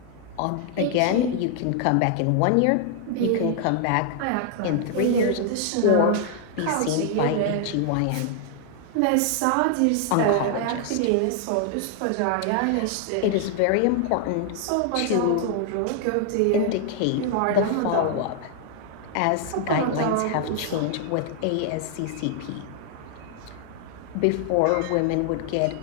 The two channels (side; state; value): both; different; correlation 0.00